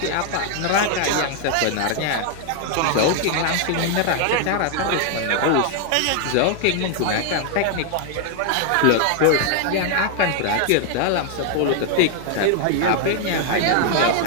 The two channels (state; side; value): different; both; correlation 0.00